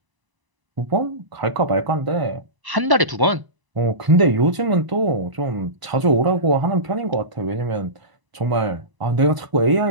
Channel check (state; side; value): late; left; 1.0 ms